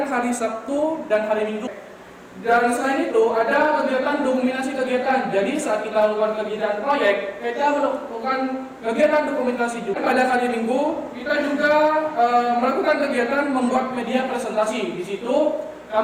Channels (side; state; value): both; identical; correlation 1.00